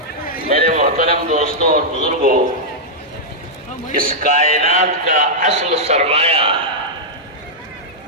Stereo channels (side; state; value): both; normal; correlation -0.07